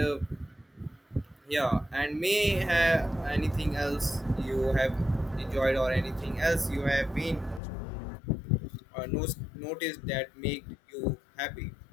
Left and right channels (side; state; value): right; drops out; at 7.6 s